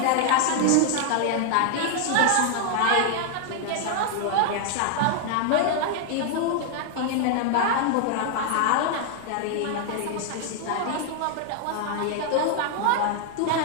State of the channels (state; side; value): different; both; correlation 0.00